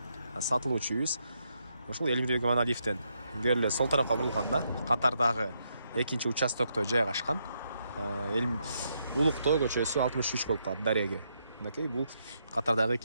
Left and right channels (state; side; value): inverted; both; correlation -0.78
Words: Сатылуучу үйүбүз ошол Элмирбек Иманалиевден көрүлө сол тарапка бурулганда катардагы экинчи участокто жайгашкан. Улуктоо көчөсү 63 болуп калат дареге. Мынакей бул катардагы